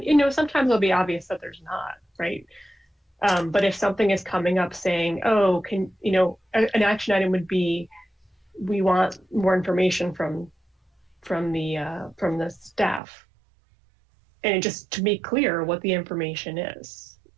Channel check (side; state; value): left; drops out; at 13.0 s